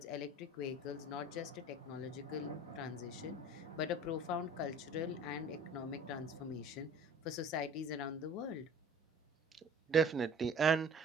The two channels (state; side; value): normal; both; correlation 0.46